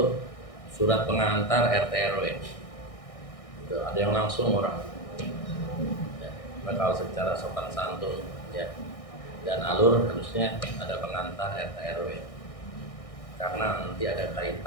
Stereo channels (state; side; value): late; right; 1.6 ms